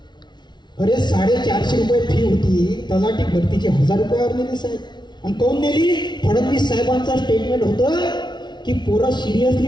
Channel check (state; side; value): late; right; 0.21 ms